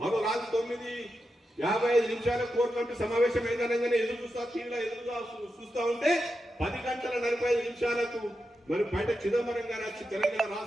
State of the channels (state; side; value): normal; both; correlation 0.88